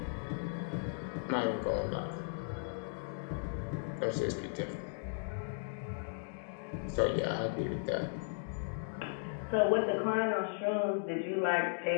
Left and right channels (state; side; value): silent; right; digital silence